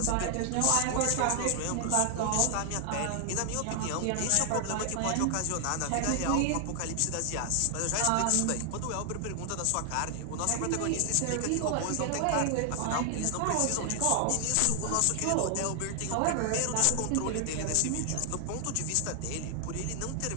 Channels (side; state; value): both; different; correlation 0.00